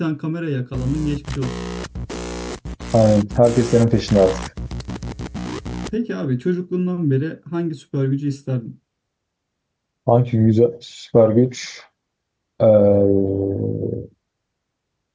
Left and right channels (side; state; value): both; identical; correlation 1.00